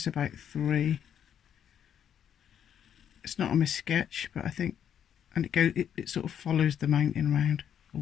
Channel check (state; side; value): quieter; right; 9.1 dB